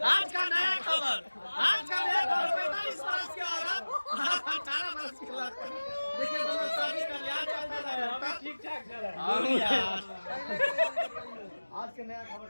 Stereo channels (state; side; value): inverted; both; correlation -1.00